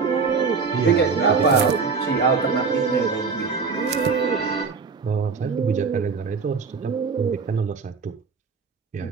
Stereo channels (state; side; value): quieter; left; 5.1 dB